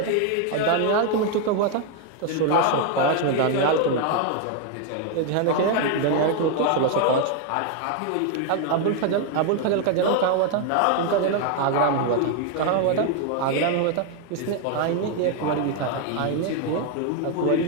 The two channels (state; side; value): different; both; correlation 0.01